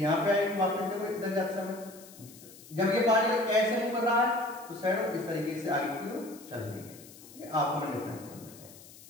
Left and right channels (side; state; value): left; noise; hiss, 20 dB below the sound